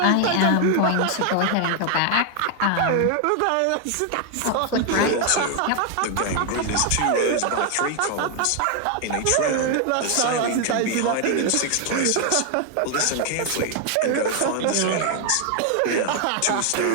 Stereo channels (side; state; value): both; different; correlation 0.01